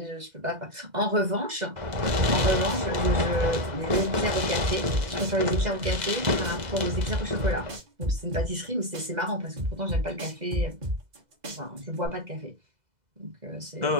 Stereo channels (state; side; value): late; left; 2.0 ms